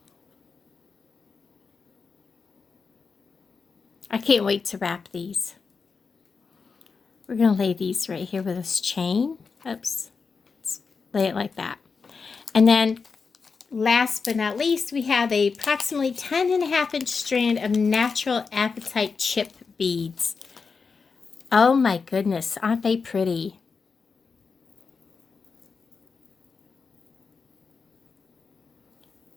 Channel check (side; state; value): right; quieter; 5.1 dB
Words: I can't wait to wrap these. We're going to lay these right here with this chain. Oops. Let's lay it like that. And then last but not least, we have a approximately 10.5-inch strand of natural apatite chip beads. Oh my goodness, aren't they pretty?